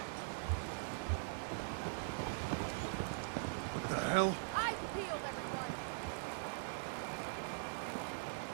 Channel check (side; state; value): left; silent; digital silence